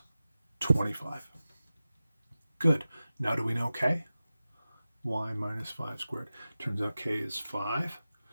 25. Good. Now do we know k? Y minus 5 squared. Turns out k is 5.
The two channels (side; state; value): both; inverted; correlation -0.95